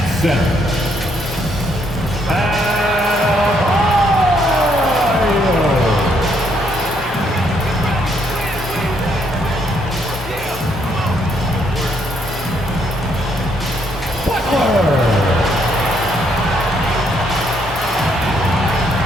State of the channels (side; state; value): both; normal; correlation 0.72